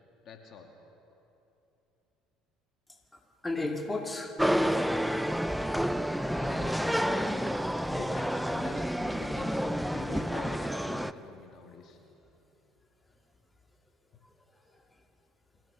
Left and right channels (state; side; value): normal; both; correlation 0.95